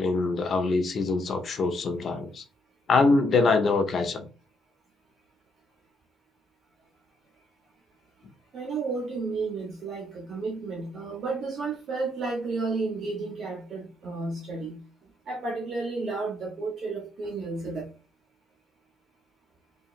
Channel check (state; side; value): normal; both; correlation 0.74